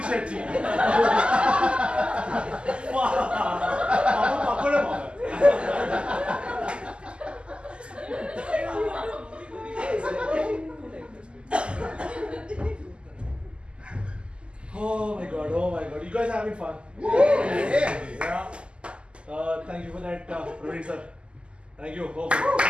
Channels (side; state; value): left; late; 0.052 ms